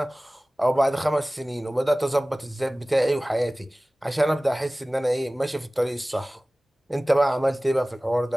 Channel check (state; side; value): normal; both; correlation 0.98